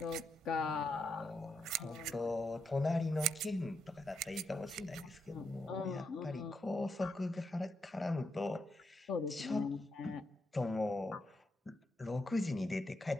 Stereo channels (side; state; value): both; normal; correlation 0.82